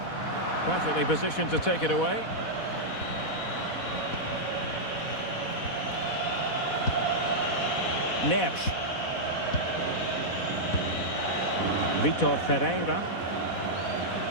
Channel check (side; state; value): right; late; 4.1 ms